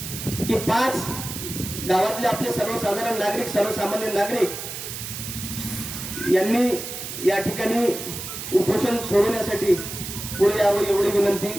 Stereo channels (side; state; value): right; noise; hiss, 8 dB below the sound